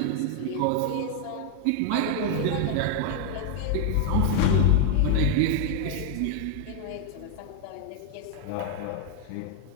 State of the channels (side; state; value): both; different; correlation 0.00